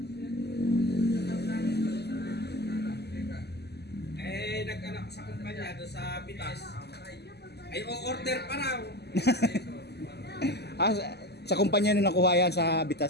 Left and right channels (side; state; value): right; late; 0.48 ms